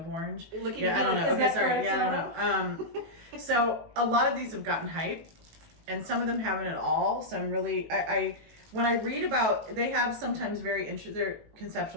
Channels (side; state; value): left; late; 19 ms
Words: orange. Yeah, I don't know. Okay, sorry. Yeah, I don't know. know. So a lot of these have gotten hype, and some of them haven't at all. So I'm really, when I read about, they have sometimes they're